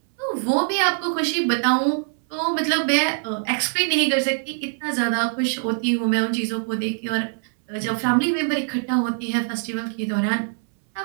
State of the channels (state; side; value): silent; left; 63 dB below the other